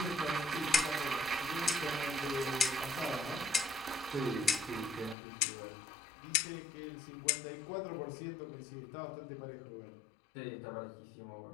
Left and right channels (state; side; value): drops out; right; at 5.2 s